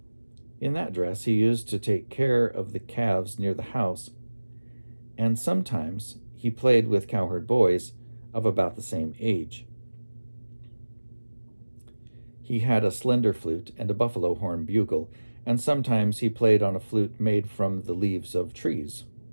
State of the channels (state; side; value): inverted; both; correlation -1.00